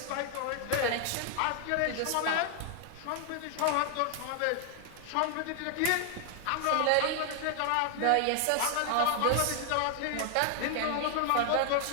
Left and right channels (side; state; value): both; different; correlation 0.00